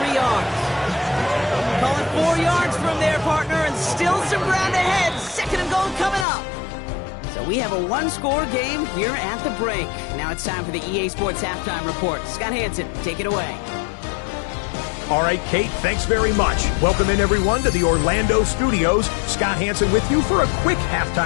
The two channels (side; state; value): right; drops out; at 6.2 s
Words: yards. Call it 4 yards from there, partner, and still some ground ahead. 2nd and goal coming up. So we have a 1-score game here at the break. Now it's time for the EA Sports Halftime Report. Scott Hansen, take it away. All right, Kate, thanks very much. Welcome in, everyone, to the Orlando studios. Scott Hansen with you for a quick